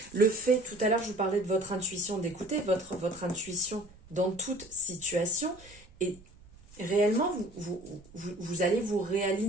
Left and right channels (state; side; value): noise; right; rumble, 24 dB below the sound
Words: le fait, tout à l'heure je vous parlais de votre intuition, d'écouter votre intuition dans toute situation, et réellement vous allez vous